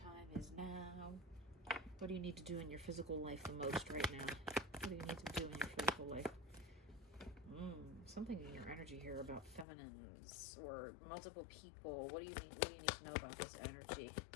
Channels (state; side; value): drops out; right; at 9.7 s